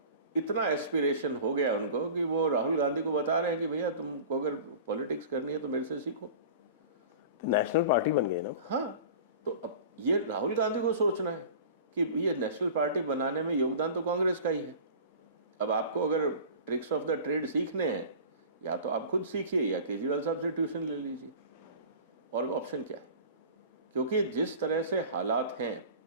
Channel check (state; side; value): inverted; both; correlation -0.38